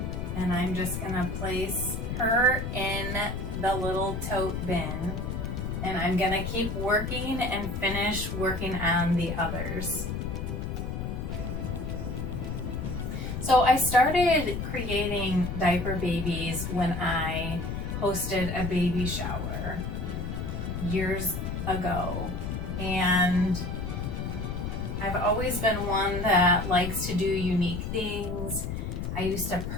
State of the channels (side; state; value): left; noise; rumble, 4 dB below the sound